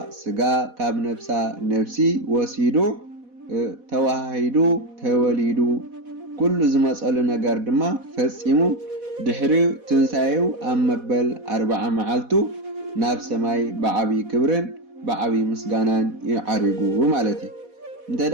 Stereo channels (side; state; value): left; late; 4.1 ms